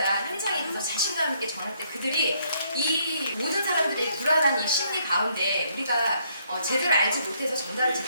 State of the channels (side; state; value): both; inverted; correlation -0.70